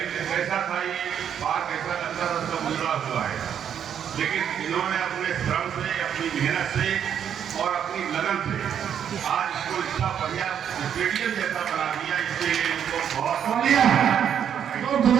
कैसा था ये बात, कैसा लगता था, सब गुजरा हुआ है, लेकिन इन्होंने अपने श्रम से, अपनी मेहनत से और अपनी लगन से आज इसको इतना बढ़िया स्टेडियम जैसा बना दिया। इसके लिए इनको बहुत तो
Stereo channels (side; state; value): left; quieter; 8.7 dB